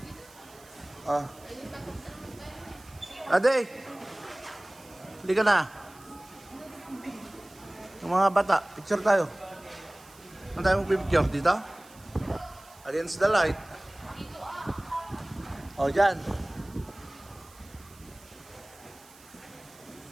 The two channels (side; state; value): right; noise; hiss, 24 dB below the sound